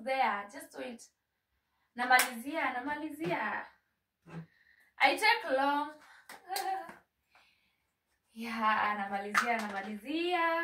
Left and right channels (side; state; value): both; identical; correlation 1.00